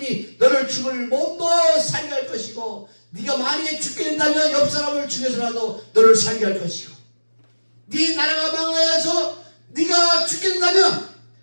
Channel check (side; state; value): both; inverted; correlation -1.00